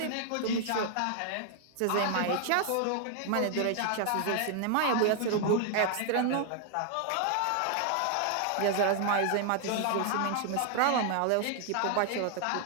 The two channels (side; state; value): both; different; correlation 0.00